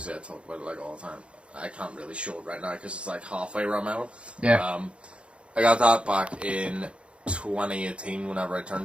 I talk about it like all the time. I can't really show it right now because it's like halfway around my arm. Yeah. I got that back in 2018 whenever I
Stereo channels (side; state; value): left; late; 0.059 ms